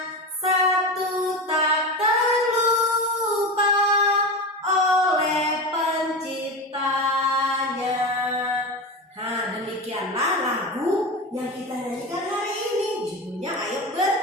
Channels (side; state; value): both; normal; correlation 0.23